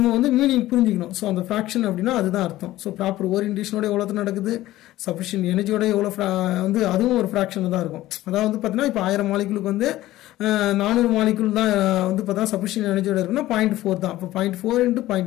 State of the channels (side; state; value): right; quieter; 15.7 dB